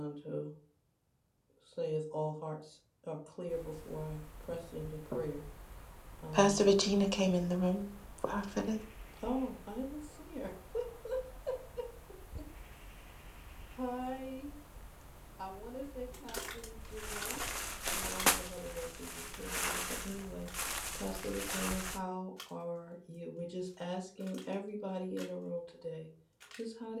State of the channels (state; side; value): identical; both; correlation 1.00